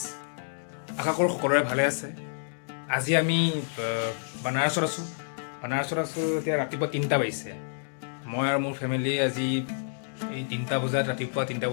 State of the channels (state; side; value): silent; right; 59 dB below the other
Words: আশা কৰোঁ সকলোৰে ভালে আছে। আজি আমি বানাৰসত আছোঁ। এতিয়া ৰাতিপুৱা 3টা বাজিছে। মই আৰু মোৰ ফেমিলি আজি এই 3টা বজাত ৰাতিপুৱা 3টা